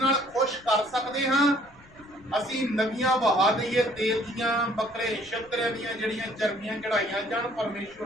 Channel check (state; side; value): noise; left; rumble, 26 dB below the sound